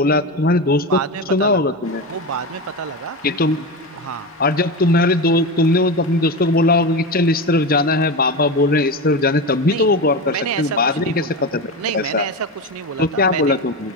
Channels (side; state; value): both; normal; correlation 0.20